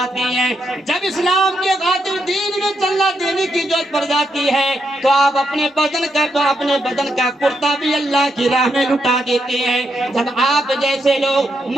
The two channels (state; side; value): normal; both; correlation 0.81